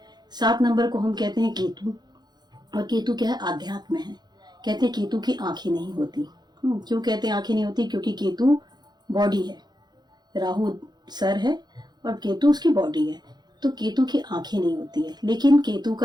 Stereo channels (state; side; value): late; left; 0.20 ms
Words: 7 नंबर को हम कहते हैं केतु, और केतु क्या है, आध्यात्म है। कहते हैं केतु की आंखें नहीं होती। क्यों कहते हैं आंखें नहीं होती, क्योंकि केतु बॉडी है, राहु सर है और केतु उसकी बॉडी है, तो केतु की आंखें नहीं होती है। लेकिन केतु